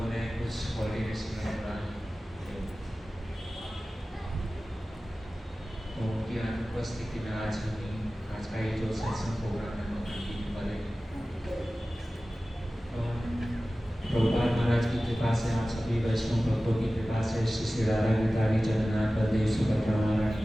ने कुछ कोऑर्डिनेशन में बोला तो उनकी अनुपस्थिति में आज का ये जो सत्संग प्रोग्राम है वो कंटिन्यू करेंगे। तो प्रभुपाद महाराज की कृपा से, आप सभी वैष्णव भक्तों की कृपा से, श्री श्री राधा गिरधारी जगन्नाथ बलदेव सुभद्रा महारानी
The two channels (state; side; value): normal; both; correlation 0.96